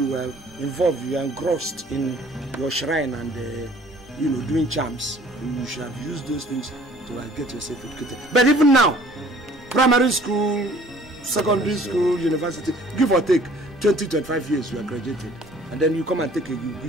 were involved, you were engrossed in your shrine and doing charms. You should have used those things to get yourself educated. But even now, primary school, secondary school, university, give or take 20-25 years, you are graduated, and then you come and take a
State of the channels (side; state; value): both; normal; correlation 0.54